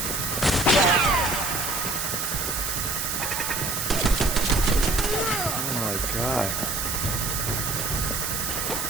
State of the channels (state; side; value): noise; right; hiss, 2 dB below the sound